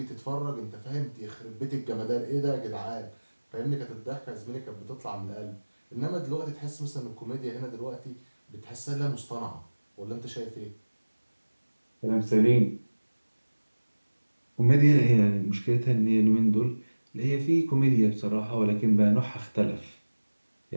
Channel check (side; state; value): both; inverted; correlation -1.00